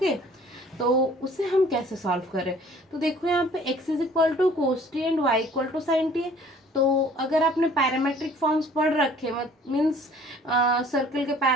तो उसे हम कैसे सॉल्व करें? तो देखो यहाँ पे x is equal to cos T and y equal to sine T है। तो अगर आपने पैरामेट्रिक फॉर्म्स पढ़ रखे, मीन्स सर्कल के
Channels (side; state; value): both; normal; correlation 0.53